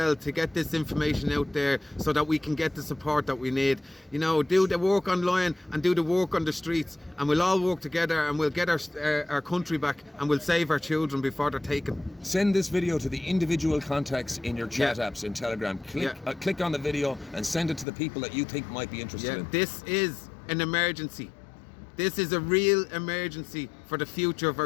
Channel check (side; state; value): right; drops out; at 17.9 s